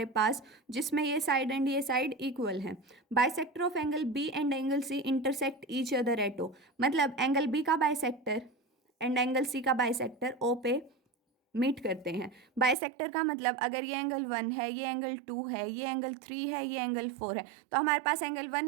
पास जिसमें ये साइड एंड ये साइड इक्वल है। Bisector of angle B and angle C intersect each other at O, मतलब एंगल बी का बाइसेक्टर एंड एंगल सी का बाइसेक्टर ओ पे मीट करते हैं। बाइसेक्टर का मतलब अगर ये एंगल 1 है, ये एंगल 2 है, ये एंगल 3 है, ये एंगल 4 है, तो हमारे पास एंगल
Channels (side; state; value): left; drops out; at 12.8 s